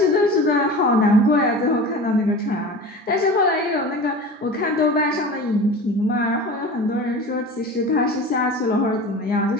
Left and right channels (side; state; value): both; normal; correlation 0.35